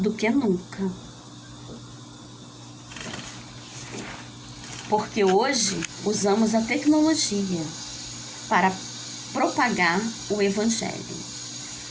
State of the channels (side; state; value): both; identical; correlation 1.00